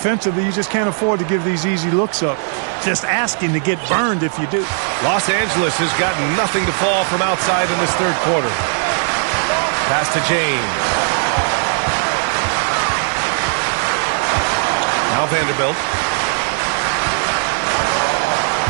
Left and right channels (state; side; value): silent; left; 61 dB below the other